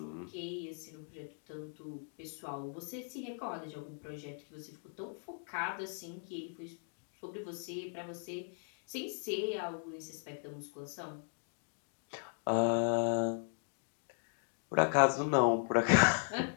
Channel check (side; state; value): right; silent; 53 dB below the other